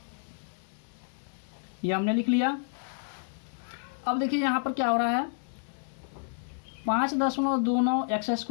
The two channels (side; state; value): right; silent; digital silence